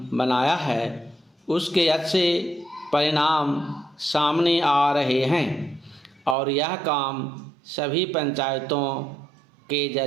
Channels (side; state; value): left; drops out; at 6.4 s